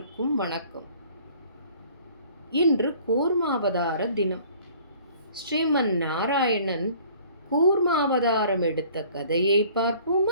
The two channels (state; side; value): inverted; both; correlation -0.53